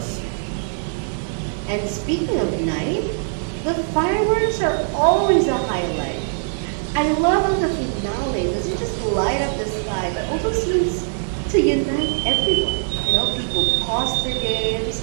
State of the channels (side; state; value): left; silent; 65 dB below the other